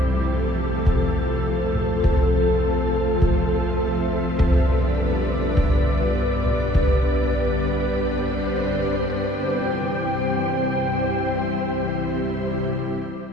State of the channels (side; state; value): both; normal; correlation 0.58